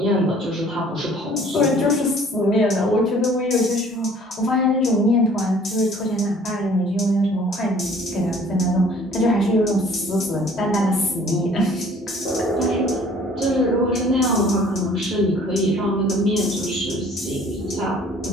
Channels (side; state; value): both; normal; correlation 0.54